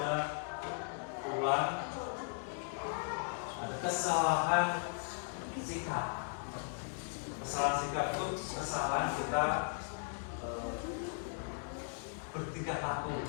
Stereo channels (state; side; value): silent; right; 53 dB below the other